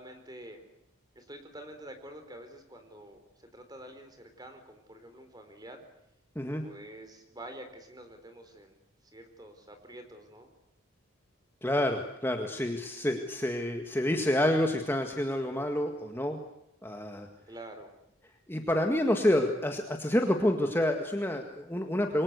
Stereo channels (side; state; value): both; normal; correlation 0.79